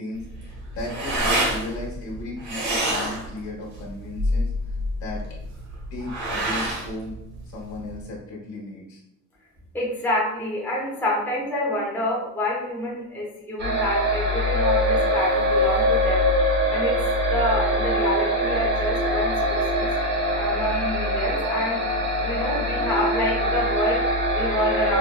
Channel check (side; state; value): both; normal; correlation 0.08